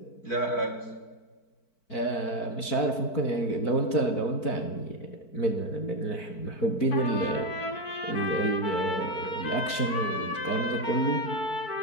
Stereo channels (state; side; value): late; right; 4.5 ms